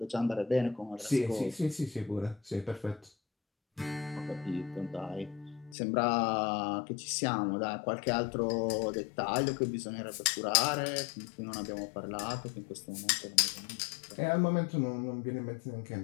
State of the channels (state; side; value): drops out; right; at 5.8 s